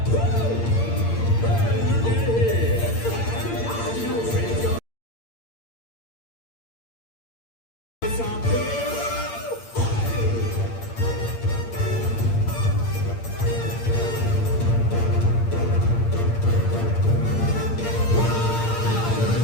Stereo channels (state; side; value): late; right; 8.7 ms